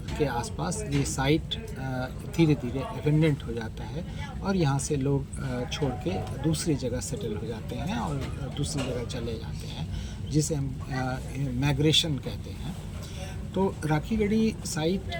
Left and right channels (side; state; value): both; identical; correlation 1.00